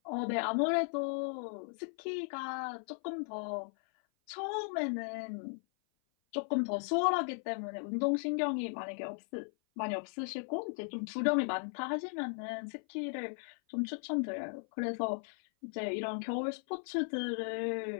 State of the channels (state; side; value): silent; right; 53 dB below the other